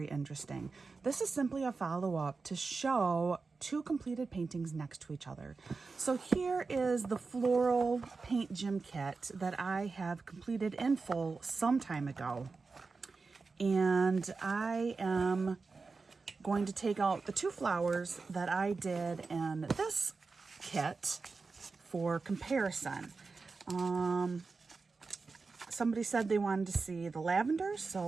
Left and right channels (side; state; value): left; quieter; 4.3 dB